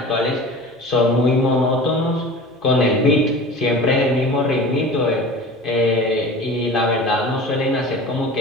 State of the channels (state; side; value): normal; both; correlation 0.37